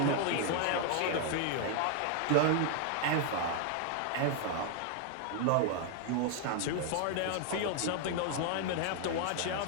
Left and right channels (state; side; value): different; both; correlation 0.00